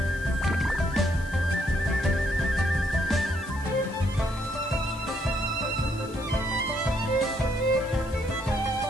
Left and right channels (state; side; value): noise; left; hiss, 21 dB below the sound